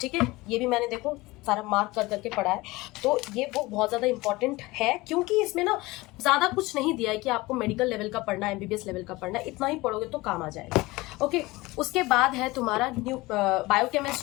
है। ये भी मैंने देखो सारा मार्क कर करके पढ़ा है। तो ये बुक बहुत ज्यादा इंपॉर्टेंट है क्योंकि इसमें ना ज्यादा कुछ नहीं दिया है कि आपको मेडिकल लेवल का पढ़ना है, एमबीबीएस लेवल का पढ़ना है, इतना ही पढ़ोगे तो काम आ जाएगा। ओके, उसके बाद है तुम्हारा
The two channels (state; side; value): quieter; right; 21.2 dB